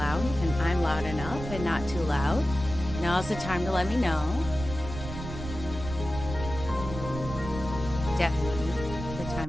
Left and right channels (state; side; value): noise; right; rumble, 9 dB below the sound